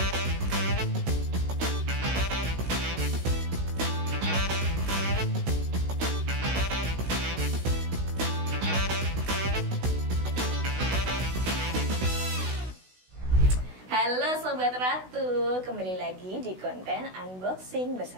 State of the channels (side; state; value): left; late; 16 ms